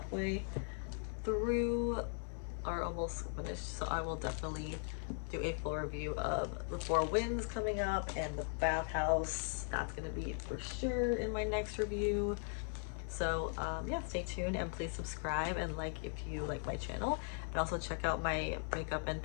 through, are almost finished. So I will definitely do a full review of The Four Winds coming up, and The Bathhouse. That's gonna be for sure in my next review. So yeah, stay tuned and please subscribe and like if you like my channel, and also check out my makeup and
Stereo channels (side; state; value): right; silent; 52 dB below the other